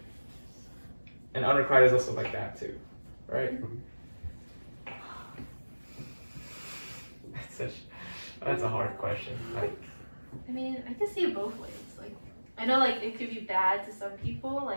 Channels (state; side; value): inverted; both; correlation -1.00